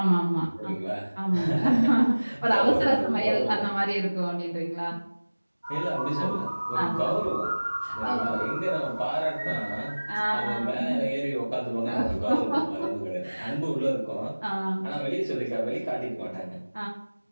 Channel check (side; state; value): both; inverted; correlation -1.00